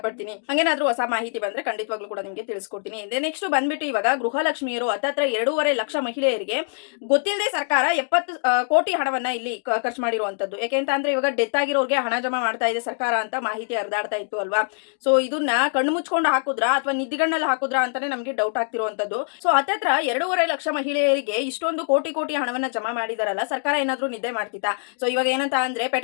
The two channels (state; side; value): silent; right; digital silence